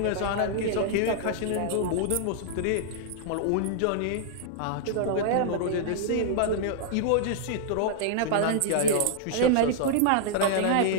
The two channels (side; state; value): both; different; correlation -0.01